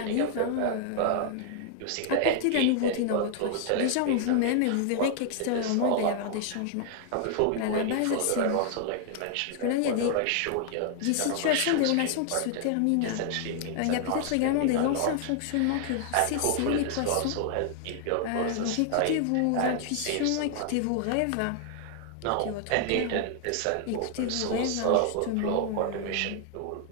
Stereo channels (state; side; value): different; both; correlation 0.00